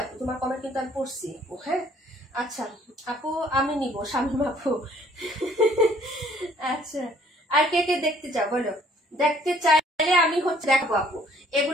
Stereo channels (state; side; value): normal; both; correlation 0.60